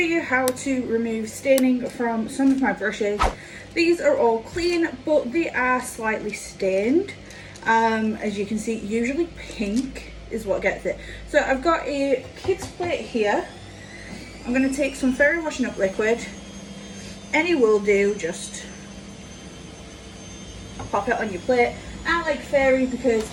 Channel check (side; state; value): both; identical; correlation 1.00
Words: how to remove staining from some of my brushes. These are all clean, but they are slightly stained. As you can see, usually pink is what gets it. So I've got a kid's plate here. I'm going to take some fairy washing up liquid. Any will do, just pop it on your plate. I like fairy